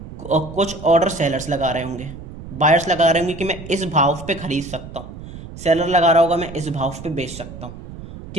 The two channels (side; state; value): right; noise; rumble, 13 dB below the sound